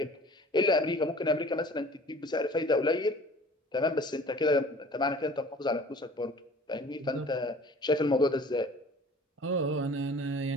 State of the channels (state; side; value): normal; both; correlation 0.47